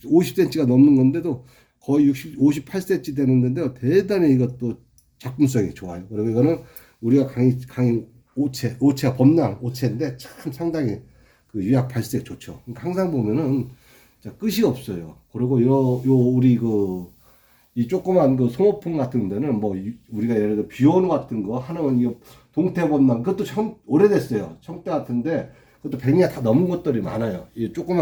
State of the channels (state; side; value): identical; both; correlation 1.00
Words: 넘는 건데도 거의 58cm 되는 건데요. 대단히 이것도 작품성이 좋아요. 그리고 이거는 우리가 강의 오체가 범랑 오체인데 참 상당히 그 유약 발색 좋죠. 그러니까 항상 보면은 자, 끝이 없어요. 그리고 요 우리 이 조그만 소모품 같은 데는 뭐 우리가 예를 들어 비오는 같은 거 하는 이 동태범람 그것도 오래됐어요. 청대 같은데 그것도 100년 다 넘은 것들이 많아요. 이